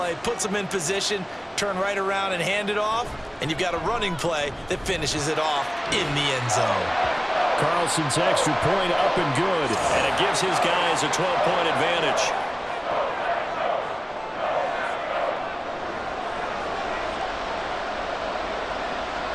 puts them in position, turn right around and hand it off, and you've got a running play that finishes it off in the end zone. Carlson's extra point up and good, and it gives his guys a 12-point advantage.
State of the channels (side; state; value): both; identical; correlation 1.00